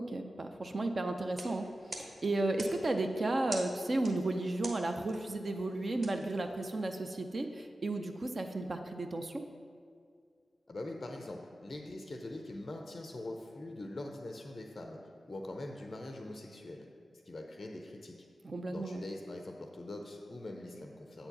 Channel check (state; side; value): normal; both; correlation 0.93